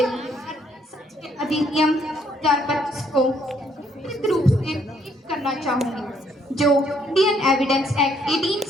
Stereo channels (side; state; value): both; normal; correlation 0.68